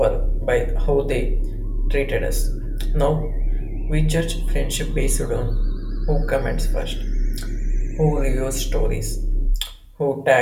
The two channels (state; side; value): identical; both; correlation 1.00